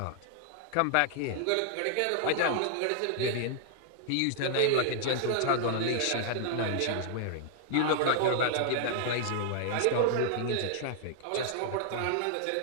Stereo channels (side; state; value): both; different; correlation -0.01